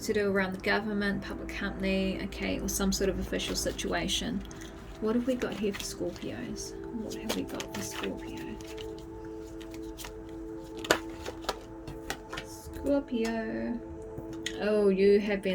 to do around the government, public company, okay, or some sort of official situation. What have we got here for Scorpios? What have we got for Scorpio? Scorpio. Oh, you have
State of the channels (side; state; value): both; identical; correlation 1.00